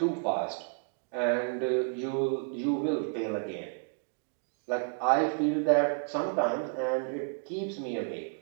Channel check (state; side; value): silent; left; 57 dB below the other